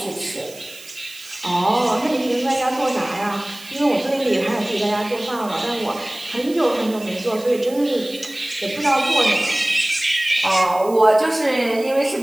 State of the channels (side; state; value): right; noise; hiss, 18 dB below the sound